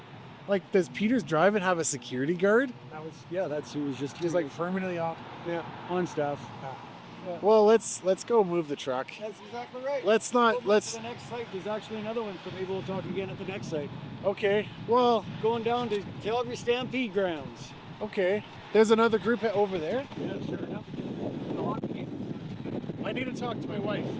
Like, does Peters Drive and have a security guard? that's who was just He's like permanently off. on staff. Well, let's go move the truck. That's exactly right. Let's Go not to let's. the next site. There's actually another one, so maybe we'll talk again at the next site. Okay. Well, Going down to Calgary Stampede grounds. okay. There's another group over there. Yeah, sure enough. I need to talk to my wife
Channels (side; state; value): both; identical; correlation 1.00